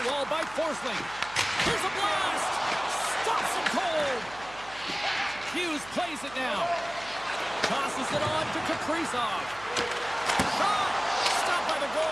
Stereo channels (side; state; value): right; noise; hum, 19 dB below the sound